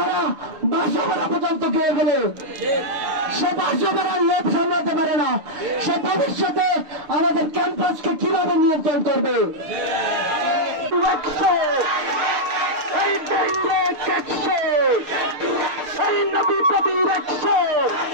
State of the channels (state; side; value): late; left; 6.8 ms